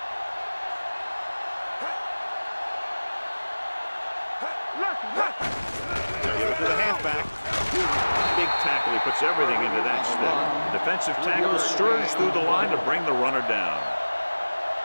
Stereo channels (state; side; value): inverted; both; correlation -1.00